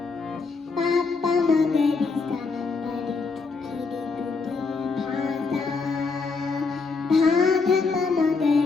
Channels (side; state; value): right; quieter; 4.4 dB